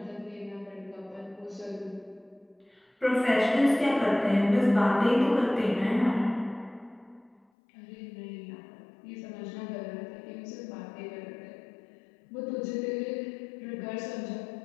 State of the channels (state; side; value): drops out; right; at 7.5 s